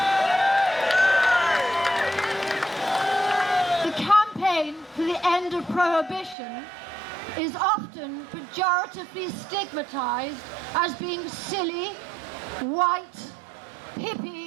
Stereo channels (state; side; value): drops out; left; at 6.4 s